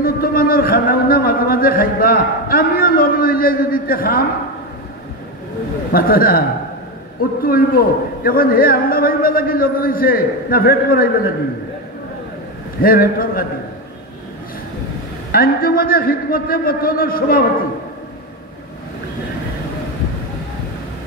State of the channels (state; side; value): normal; both; correlation 0.14